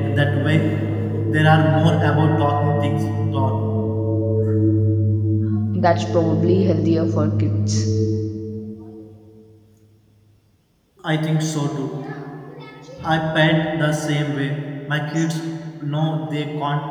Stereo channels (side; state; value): both; identical; correlation 1.00